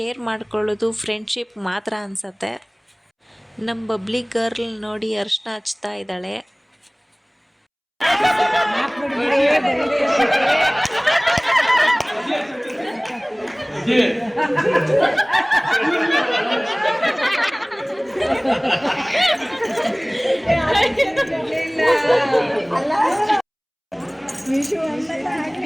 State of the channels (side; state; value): both; identical; correlation 1.00